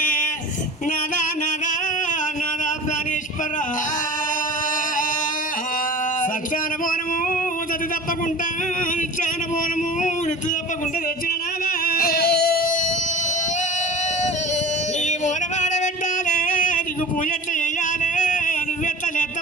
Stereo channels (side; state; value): both; normal; correlation 0.37